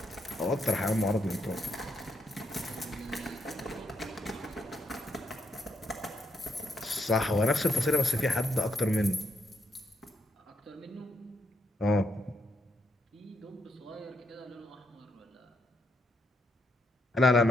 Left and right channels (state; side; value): normal; both; correlation 0.77